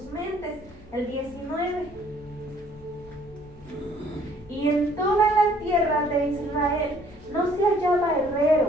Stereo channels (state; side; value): noise; left; hum, 25 dB below the sound